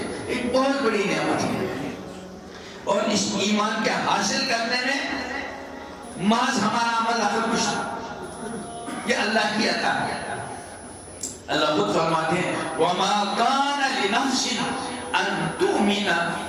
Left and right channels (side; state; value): both; identical; correlation 1.00